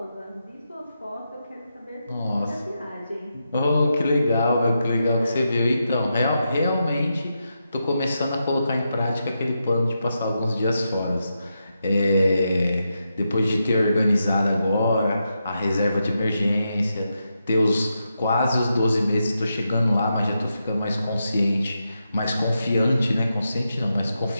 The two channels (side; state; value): both; inverted; correlation -0.86